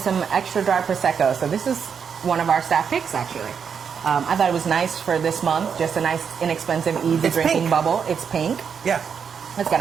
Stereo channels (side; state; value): left; quieter; 6.9 dB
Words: extra dry prosecco. So this is one of our staff picks actually. I thought it was nice for this month. Just a nice, inexpensive, easy It's drinking pink. bubble. It's pink. Yeah. It's got